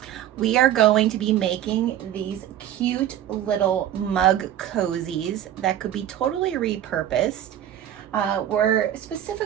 We are going to be making these cute little mug cozies that could be totally repurposed. We're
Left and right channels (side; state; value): left; quieter; 11.4 dB